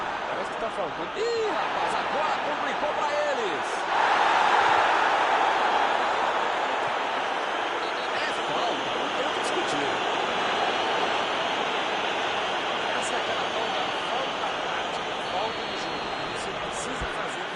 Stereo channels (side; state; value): both; identical; correlation 1.00